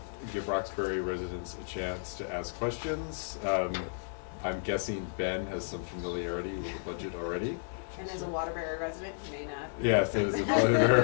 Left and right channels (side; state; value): right; silent; digital silence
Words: give Roxbury residents a chance to ask questions. I'm guessing Ben has some familiarity with the budget already. And as a Waterbury resident, you may not. Yes, it is a